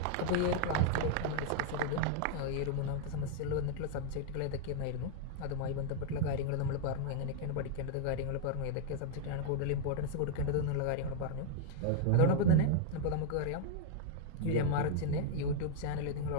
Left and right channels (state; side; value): different; both; correlation 0.00